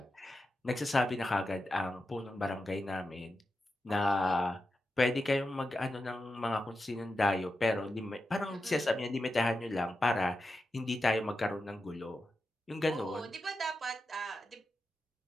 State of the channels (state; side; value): normal; both; correlation 0.89